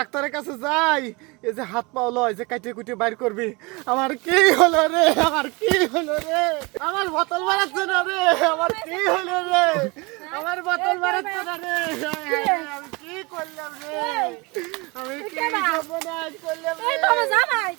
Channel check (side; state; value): left; quieter; 26.2 dB